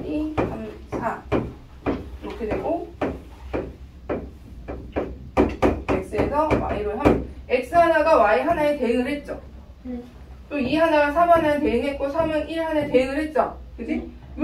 2, 3, 4 이렇게 되고 x에서 y로 x 하나가 y 하나에 대응을 했죠. 또 2 하나가 3 하나에 대응했고 3은 1 하나에 대응을 했죠. 그지?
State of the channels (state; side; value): identical; both; correlation 1.00